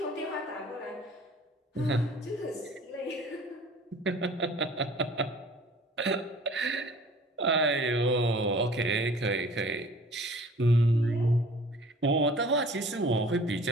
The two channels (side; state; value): both; normal; correlation 0.49